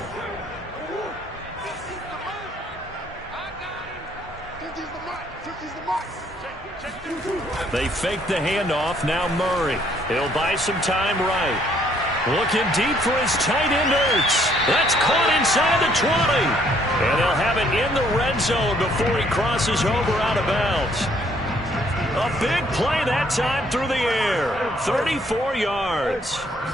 They fake the handoff. Now Murray. He'll buy some time right. Looking deep for his tight end, Ertz. That's caught inside the 20. And they'll have it in the red zone before he crosses over out of bounds. A big play that time through the air. 34 yards.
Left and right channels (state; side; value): normal; both; correlation 0.65